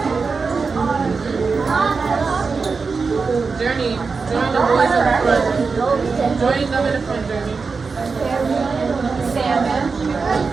Journey. Join the boys in the front. Join them in the front, Journey. Salmon.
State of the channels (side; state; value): left; quieter; 4.7 dB